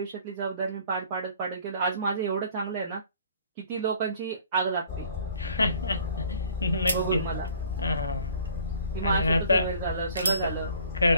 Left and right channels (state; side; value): inverted; both; correlation -0.54